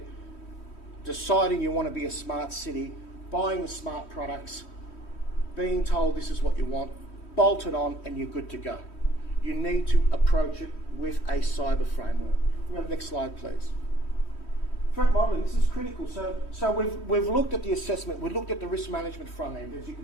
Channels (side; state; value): right; late; 3.1 ms